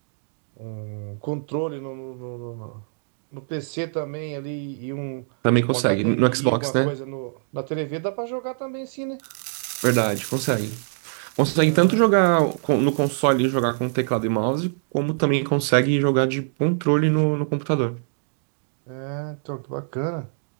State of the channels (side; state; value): left; silent; digital silence